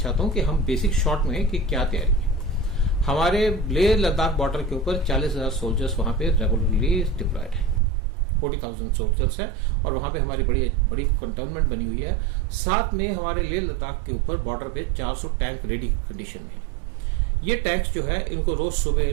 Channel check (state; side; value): drops out; left; at 7.8 s